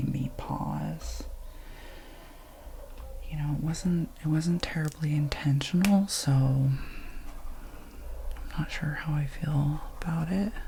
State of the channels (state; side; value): identical; both; correlation 1.00